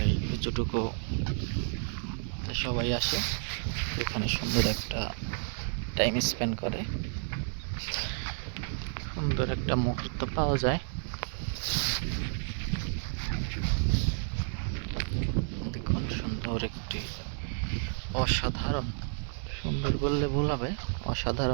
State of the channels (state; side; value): silent; left; digital silence